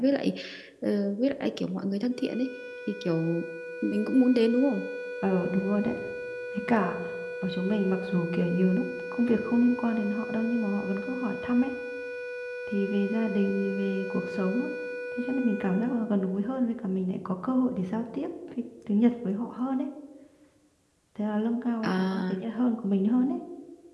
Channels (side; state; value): both; identical; correlation 1.00